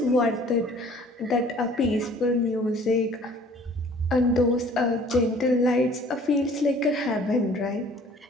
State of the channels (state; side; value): normal; both; correlation 0.52